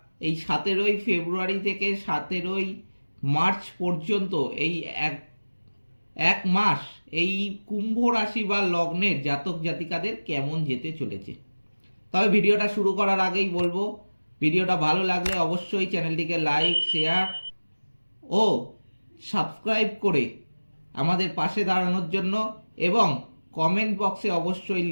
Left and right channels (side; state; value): both; inverted; correlation -1.00